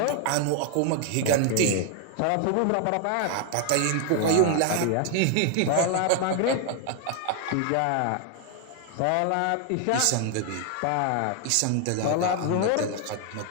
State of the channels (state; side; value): different; both; correlation 0.00